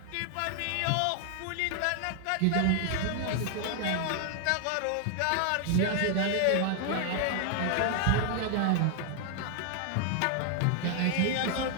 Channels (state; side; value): different; both; correlation 0.00